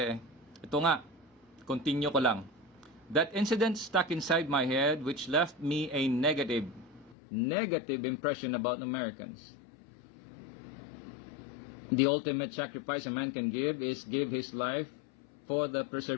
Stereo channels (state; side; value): drops out; right; at 7.2 s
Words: Ito nga, continue ko lang. That incident stuck inside my head, which left me a negative impression about Americans. The ultimate sacrifice a man can give is give his life for the